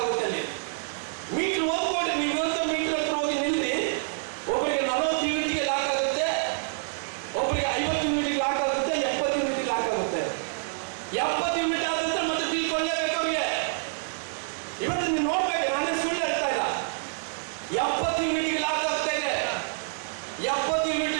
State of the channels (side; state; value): left; silent; 60 dB below the other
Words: ಅಲ್ಲಿ. ಮೀಟರ್ ಹೋಗ್ಕೊಡ್ರಿ, ನೀವು ಇವತ್ತು ಮೀಟರ್ ಹತ್ರ ಹೋಗಿ ನಿಲ್ರಿ, ಒಬ್ಬರಿಗೆ 40 ಯೂನಿಟ್ಗೆ ಲಾಕ್ ಆಗುತ್ತೆ, ಒಬ್ಬರಿಗೆ 50 ಯೂನಿಟ್ಗೆ ಲಾಕ್ ಆಗುತ್ತೆ, 70 ಯೂನಿಟ್ಗೆ ಲಾಕ್ ಆಗುತ್ತೆ. 70 ಯೂನಿಟ್ ಆದಂದ್ರೆ ಮತ್ತೆ ಬಿಲ್ ಕೊಡಲೇಬೇಕು ಅವ್ರಿಗೆ. ಇವತ್ತು ನೀವು ನೋಡ್ಬೇಕು, ನಾನೇ ಸುಳ್ಳು ಹೇಳ್ತಾ ಇಲ್ಲ, 70 ಯೂನಿಟ್ಗೆ ಲಾಕ್ ಆಗ್ತಾ ಇದೆ. 70 ಯೂನಿಟ್